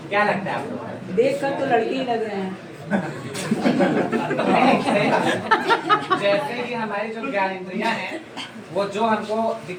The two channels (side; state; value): both; identical; correlation 1.00